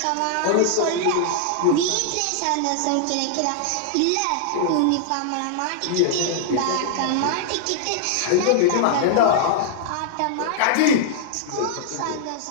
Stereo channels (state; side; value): different; both; correlation -0.01